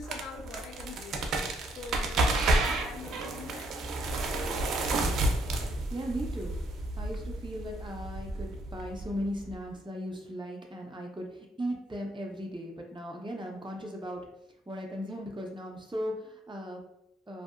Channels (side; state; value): both; normal; correlation 0.72